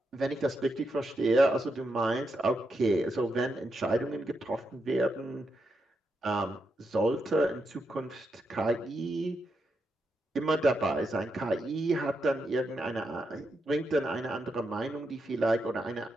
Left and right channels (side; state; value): both; normal; correlation 0.83